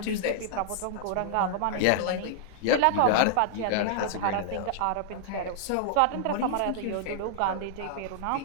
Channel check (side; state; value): both; different; correlation -0.01